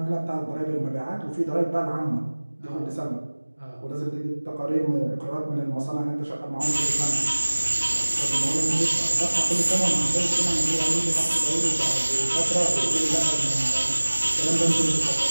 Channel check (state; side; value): inverted; both; correlation -1.00